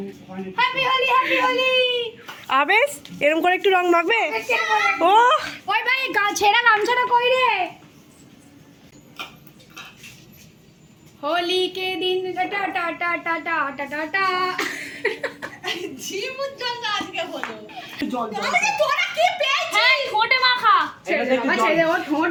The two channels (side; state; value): both; identical; correlation 1.00